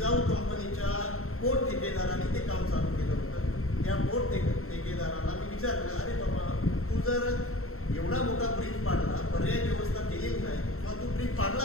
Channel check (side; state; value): right; late; 0.63 ms